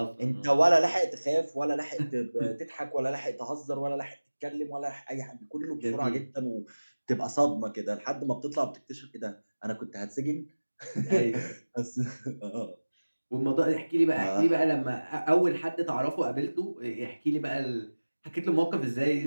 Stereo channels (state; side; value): inverted; both; correlation -1.00